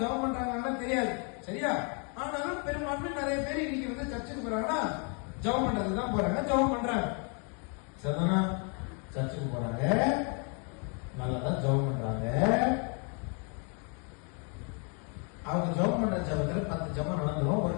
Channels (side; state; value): right; quieter; 37.6 dB